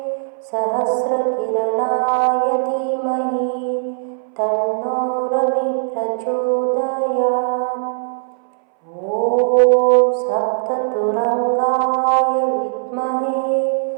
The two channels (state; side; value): silent; left; 63 dB below the other